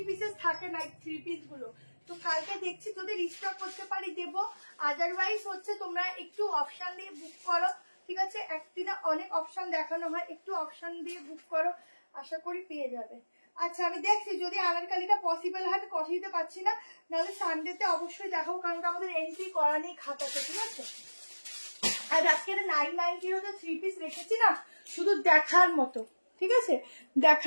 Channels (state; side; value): inverted; both; correlation -1.00